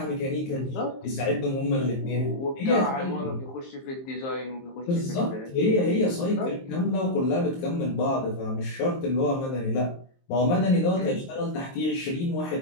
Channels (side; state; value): right; late; 23 ms